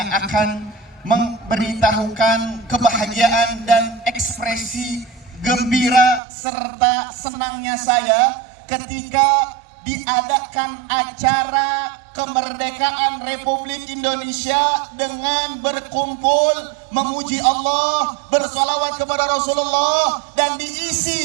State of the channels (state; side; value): drops out; left; at 6.2 s